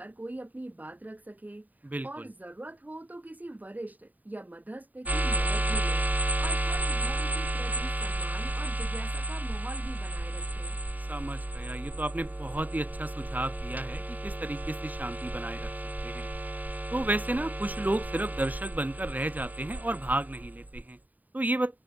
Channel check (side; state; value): left; late; 0.082 ms